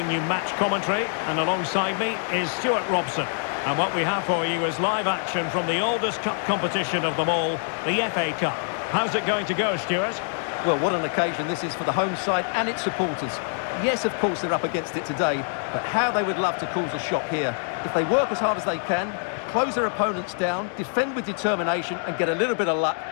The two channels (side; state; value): right; silent; 62 dB below the other